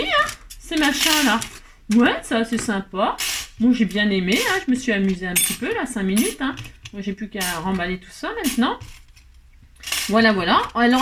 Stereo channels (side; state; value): both; identical; correlation 1.00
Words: hein, ces machins-là. Ouais, ça c'est sympa. Bon, j'ai bien aimé, hein. Je me suis amusée un petit peu, là, 5 minutes, hein. Moi, j'ai plus qu'à remballer tout ça maintenant. Voilà, voilà.